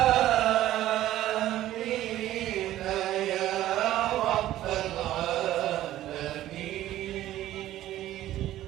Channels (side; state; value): left; quieter; 13.9 dB